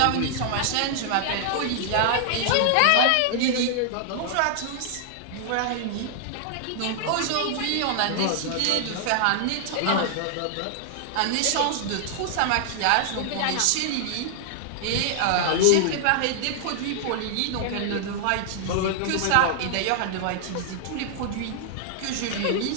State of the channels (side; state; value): both; different; correlation -0.01